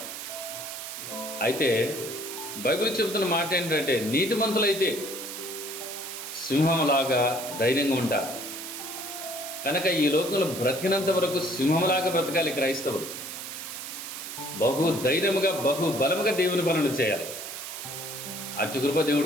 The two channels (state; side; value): noise; right; hiss, 8 dB below the sound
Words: అయితే బైబిల్ చెబుతున్న మాట ఏంటంటే, నీతిమంతులైతే సింహంలాగా ధైర్యంగా ఉంటారు. కనుక ఈ లోకంలో బ్రతికినంత వరకు సింహంలాగా బ్రతకాలి క్రైస్తవులు. బహు ధైర్యముగా బహు బలముగా దేవుని పనులు చేయాలి. అతి కృప